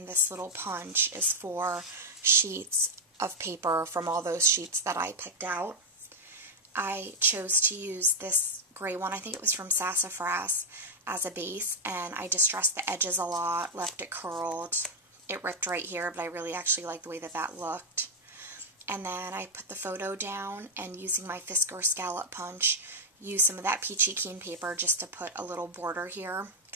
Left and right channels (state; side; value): normal; both; correlation 0.02